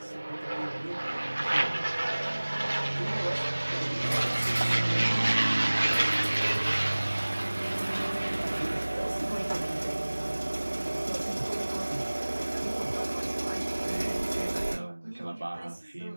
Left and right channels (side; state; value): both; inverted; correlation -1.00